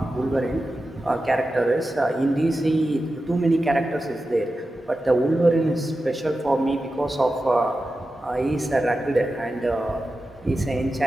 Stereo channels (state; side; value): normal; both; correlation 0.92